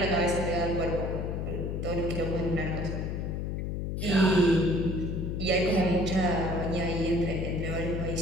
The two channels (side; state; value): left; noise; hum, 2 dB below the sound